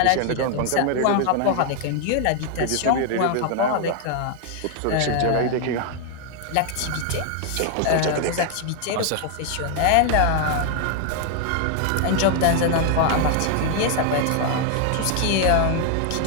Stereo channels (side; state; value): both; different; correlation 0.00